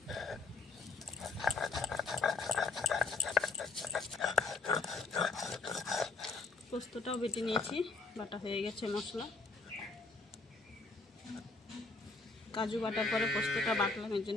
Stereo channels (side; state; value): right; quieter; 3.8 dB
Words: পোস্তটাও বেটে নিয়েছি, বাটা হয়ে গেছে মশলা। কাজু বাটার পরে পোস্তটা বাটলাম, এর